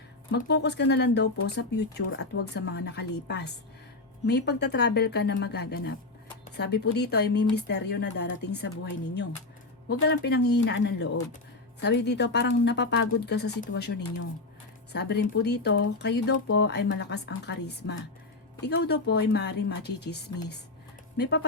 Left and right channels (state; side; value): quieter; right; 3.2 dB